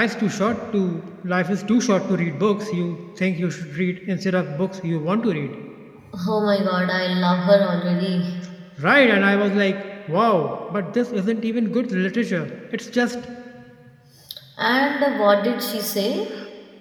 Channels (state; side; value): identical; both; correlation 1.00